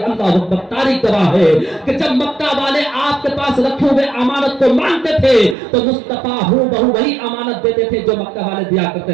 اللہ اکبر، تاریخ گواہ ہے کہ جب مکہ والے آپ کے پاس رکھے ہوئے امانت کو مانتے تھے تو مصطفیٰ ہو بہو وہی امانت دیتے تھے جو مکہ والے دیا کرتے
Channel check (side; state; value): left; drops out; at 5.6 s